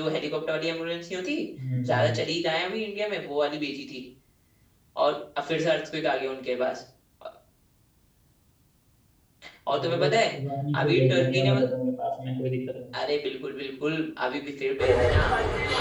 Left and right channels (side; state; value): both; identical; correlation 1.00